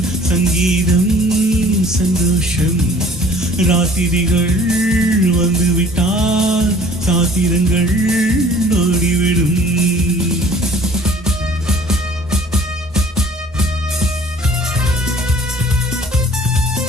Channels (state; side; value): normal; both; correlation 0.52